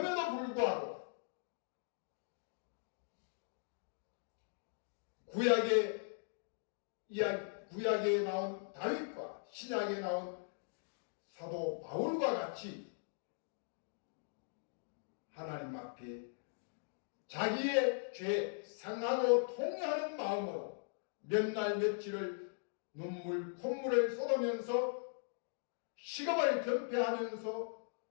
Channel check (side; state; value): right; silent; digital silence